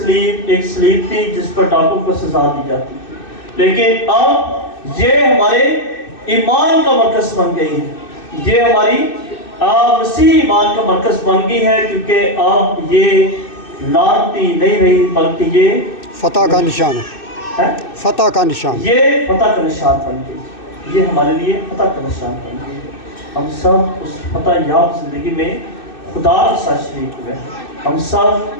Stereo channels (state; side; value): late; right; 2.6 ms